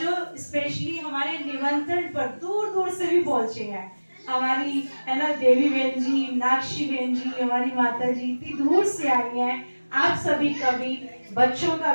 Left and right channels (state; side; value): inverted; both; correlation -1.00